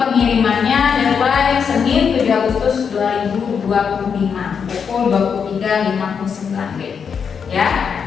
deadline Senin 7 Agustus 2025 pukul 23.59 ya.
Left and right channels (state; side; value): quieter; right; 6.6 dB